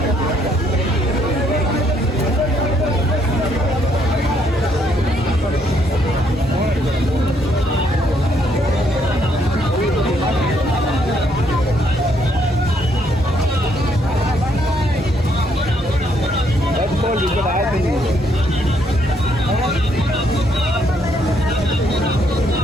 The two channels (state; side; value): normal; both; correlation 0.71